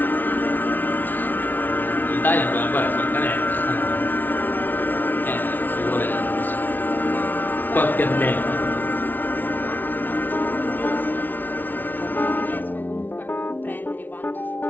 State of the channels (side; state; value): right; late; 0.087 ms